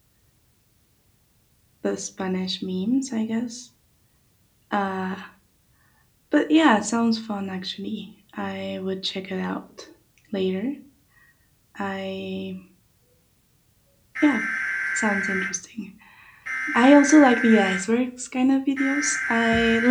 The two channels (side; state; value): both; identical; correlation 1.00